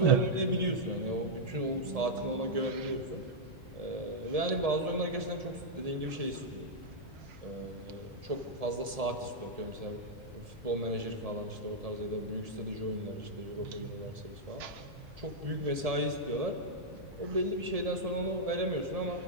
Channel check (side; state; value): left; late; 1.7 ms